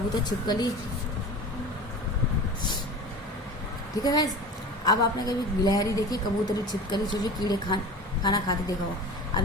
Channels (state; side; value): normal; both; correlation 0.35